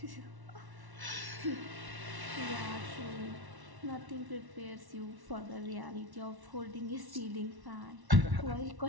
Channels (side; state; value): left; late; 1.1 ms